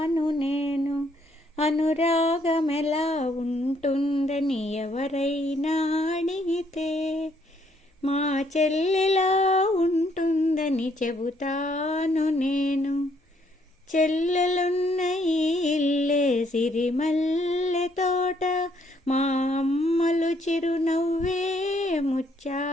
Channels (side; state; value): both; normal; correlation 0.69